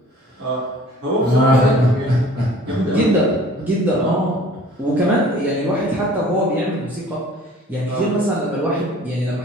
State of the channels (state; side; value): normal; both; correlation 0.49